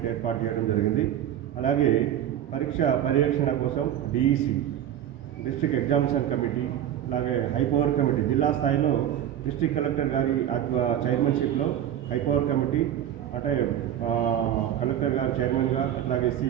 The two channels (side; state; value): left; quieter; 10.8 dB